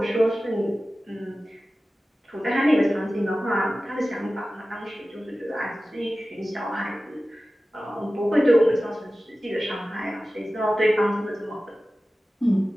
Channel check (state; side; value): normal; both; correlation 0.96